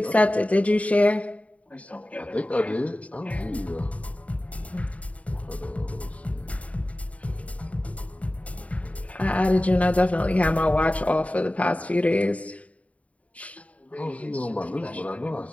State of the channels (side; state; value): right; late; 0.067 ms